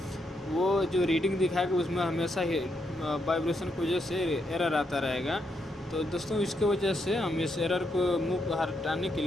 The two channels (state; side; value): normal; both; correlation 0.79